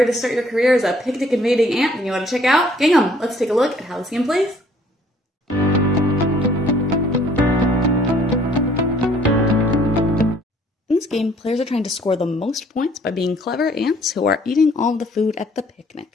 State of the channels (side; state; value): both; normal; correlation 0.60